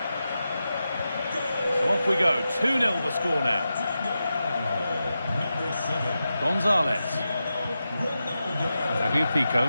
So off we go. 2-0 the score now. Gonzalez.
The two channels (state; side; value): inverted; both; correlation -0.90